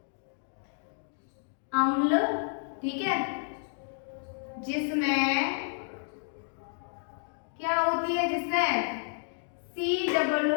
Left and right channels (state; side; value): silent; right; digital silence